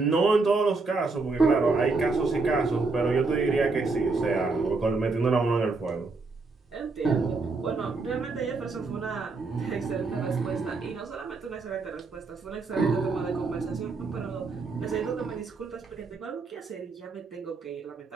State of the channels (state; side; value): quieter; left; 3.9 dB